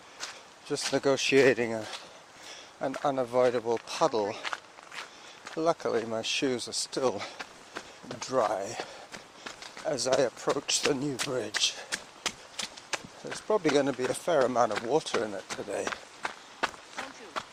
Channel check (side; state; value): both; identical; correlation 1.00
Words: just negotiating an unavoidable puddle. Luckily my shoes are still dry as I approach the new bridge. There's probably going to be a fair amount of water in it today.